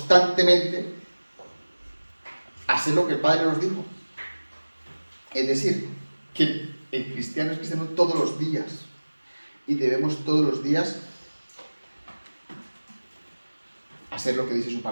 hacer lo que el Padre nos dijo. Es decir, que el cristiano es cristiano todos los días y debemos todos los días hacer lo que dice su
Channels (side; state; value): both; inverted; correlation -1.00